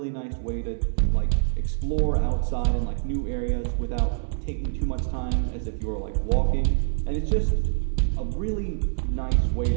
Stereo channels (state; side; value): silent; left; 61 dB below the other